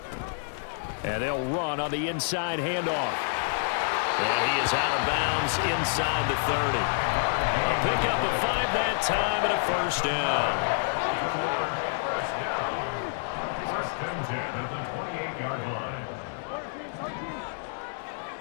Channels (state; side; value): silent; right; digital silence